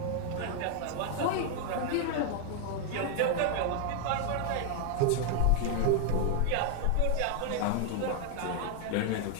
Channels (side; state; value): both; different; correlation 0.00